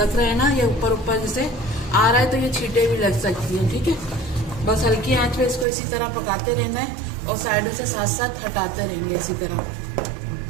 रहे हैं ना, ये ऊपर ऊपर जैसे आ रहा है तो ये छींटे भी लग सकती हैं, ठीक है। बस हल्की आंच पे इसको इसी तरह पकाते रहना है और साइडों से साथ साथ हटाते रहेंगे इसी तरह।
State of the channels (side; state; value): left; drops out; at 5.7 s